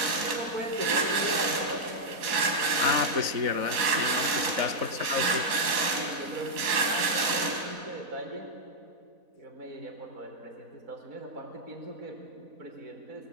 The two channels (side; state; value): left; late; 4.0 ms